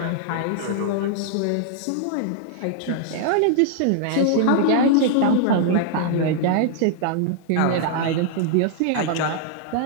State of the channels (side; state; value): both; different; correlation -0.01